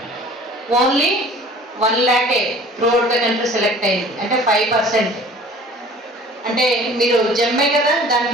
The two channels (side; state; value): both; normal; correlation 0.48